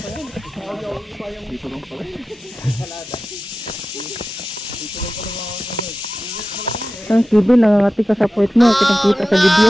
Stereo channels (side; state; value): both; normal; correlation 0.94